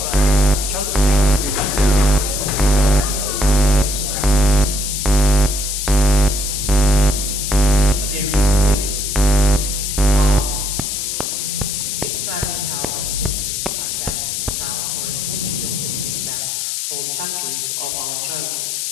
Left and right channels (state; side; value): noise; left; hiss, 3 dB below the sound